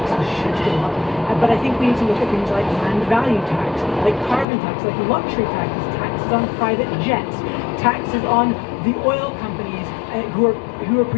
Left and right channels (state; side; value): drops out; right; at 4.5 s